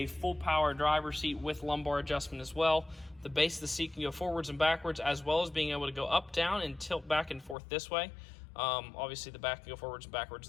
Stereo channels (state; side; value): drops out; right; at 7.6 s